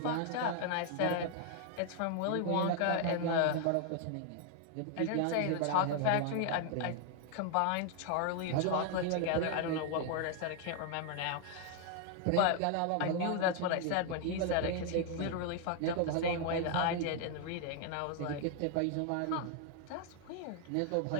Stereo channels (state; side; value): different; both; correlation 0.00